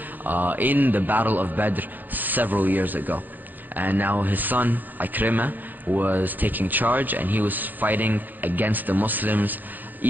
in the Battle of Badr several years ago. And now his son, Ikrimah, was taking charge, and he was fighting against the Muslims,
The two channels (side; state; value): left; late; 0.088 ms